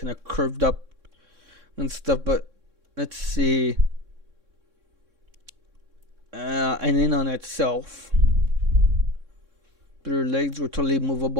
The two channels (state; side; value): late; left; 3.6 ms